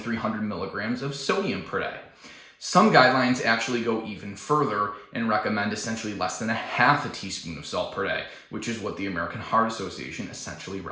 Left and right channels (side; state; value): both; identical; correlation 1.00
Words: milligrams of sodium per day. Some guidelines actually go even further and recommend essentially less than a half a teaspoon of salt per day, which is what the American Heart Association essentially